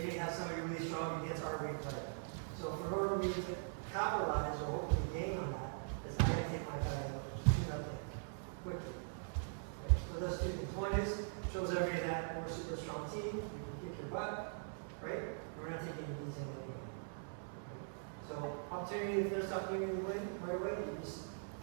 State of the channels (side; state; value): left; silent; digital silence